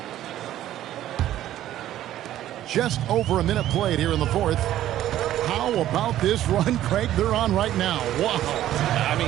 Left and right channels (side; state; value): left; quieter; 12.9 dB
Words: Just over a minute played here in the 4th. How about this run, Craig, they're on right now? Wow. I